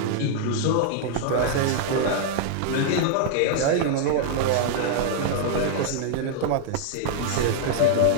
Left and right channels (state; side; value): different; both; correlation -0.01